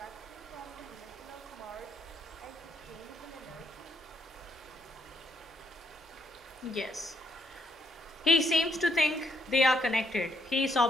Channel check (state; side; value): normal; both; correlation 0.73